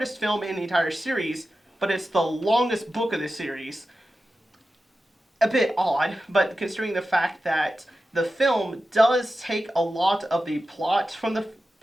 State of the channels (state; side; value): normal; both; correlation 0.93